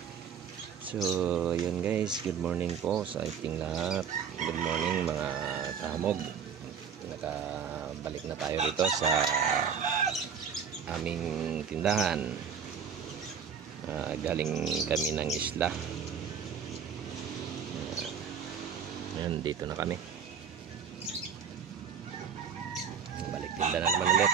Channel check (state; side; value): quieter; left; 7.2 dB